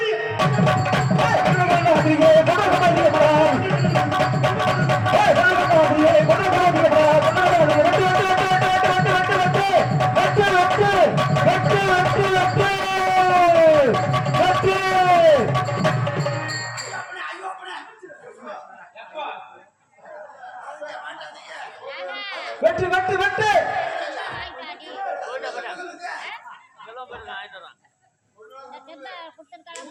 வெற்றி வெற்றி வெற்றி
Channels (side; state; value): both; identical; correlation 1.00